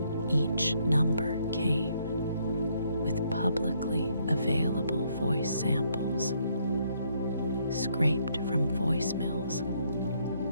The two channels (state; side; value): inverted; both; correlation -0.71